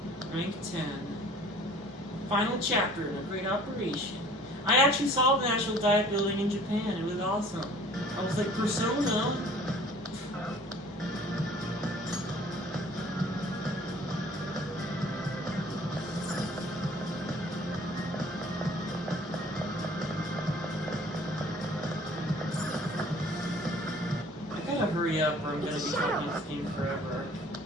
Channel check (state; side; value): normal; both; correlation 0.51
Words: Rank 10. Final chapter in a great operation. I actually saw the National Diet Building in Japan. It was awesome. I was like, Persona? I gotta hurry up or I'm gonna be talking this game forever.